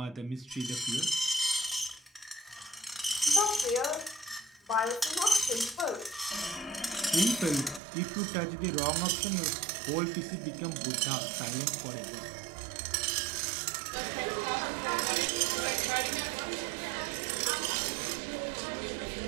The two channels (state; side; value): drops out; left; at 7.8 s